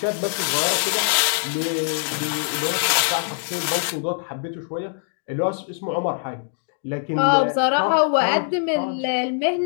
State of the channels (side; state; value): right; silent; 64 dB below the other